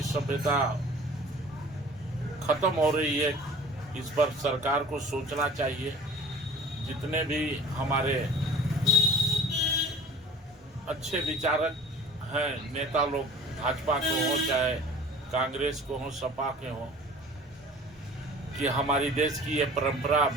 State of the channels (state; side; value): normal; both; correlation 0.45